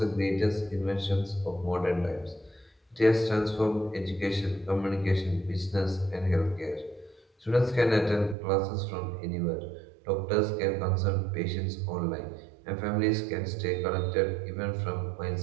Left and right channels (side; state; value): left; drops out; at 8.3 s